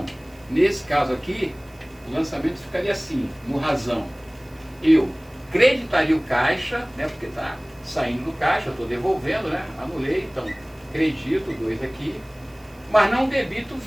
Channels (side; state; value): right; noise; hiss, 28 dB below the sound